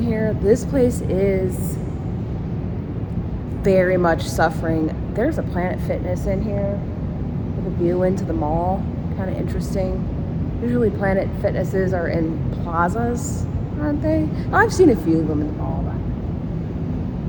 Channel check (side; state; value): both; identical; correlation 1.00